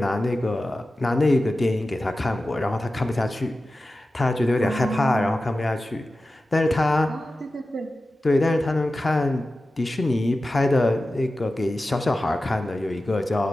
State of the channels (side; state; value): both; normal; correlation 0.94